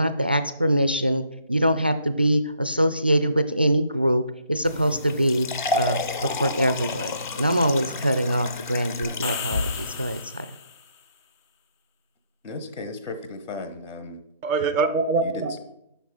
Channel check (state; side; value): inverted; both; correlation -0.68